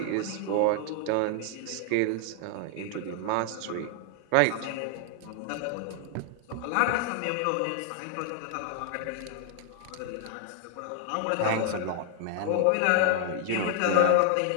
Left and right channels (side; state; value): both; different; correlation 0.00